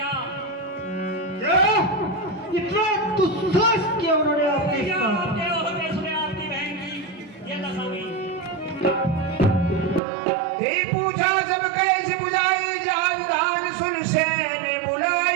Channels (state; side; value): drops out; left; at 10.0 s